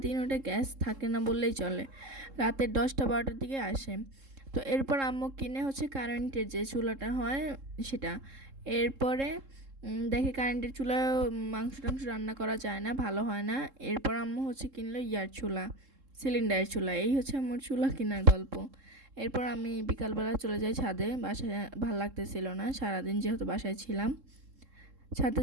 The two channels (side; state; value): left; late; 3.7 ms